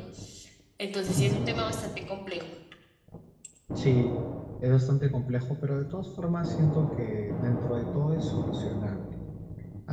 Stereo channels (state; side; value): identical; both; correlation 1.00